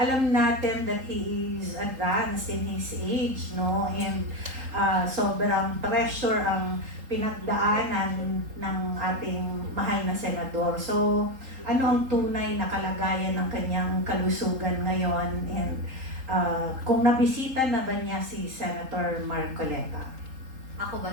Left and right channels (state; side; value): late; left; 3.8 ms